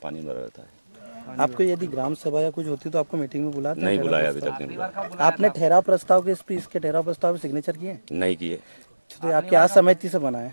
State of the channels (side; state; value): both; inverted; correlation -1.00